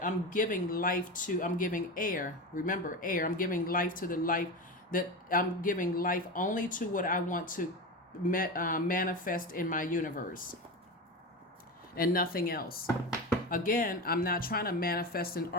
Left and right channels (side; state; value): both; normal; correlation 0.23